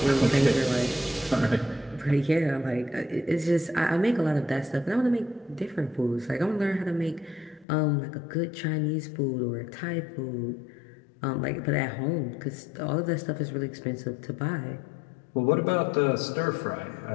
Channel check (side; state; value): right; drops out; at 7.7 s